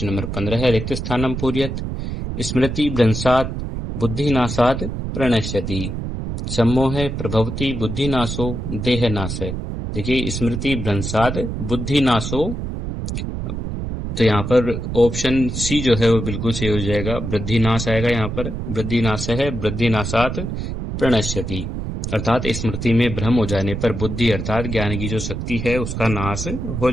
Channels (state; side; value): noise; right; rumble, 4 dB below the sound